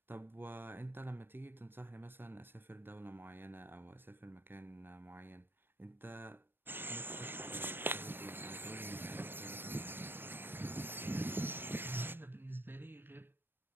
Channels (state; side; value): late; left; 0.098 ms